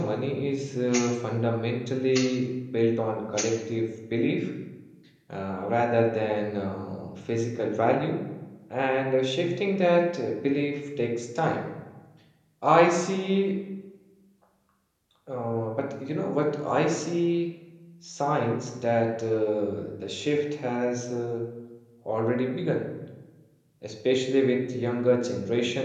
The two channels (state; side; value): identical; both; correlation 1.00